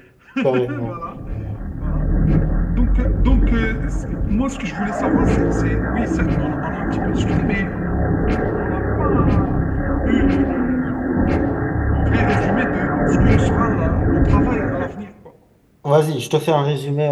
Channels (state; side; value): identical; both; correlation 1.00